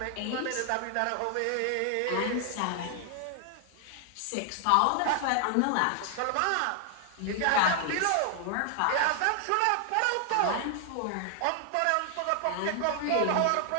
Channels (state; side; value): different; both; correlation 0.00